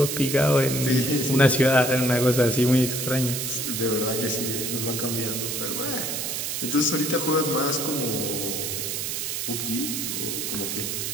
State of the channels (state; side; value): noise; right; hiss, 2 dB below the sound